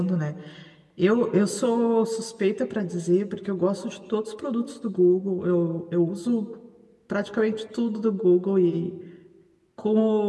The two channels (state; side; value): identical; both; correlation 1.00